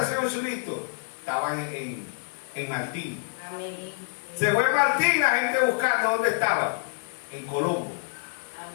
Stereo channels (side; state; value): right; silent; digital silence